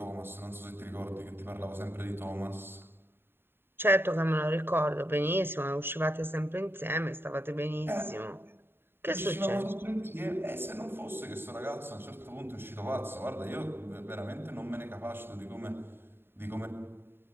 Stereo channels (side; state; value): left; late; 0.11 ms